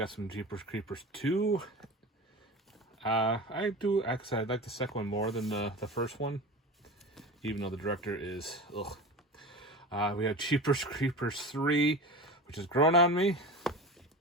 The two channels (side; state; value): both; normal; correlation 0.30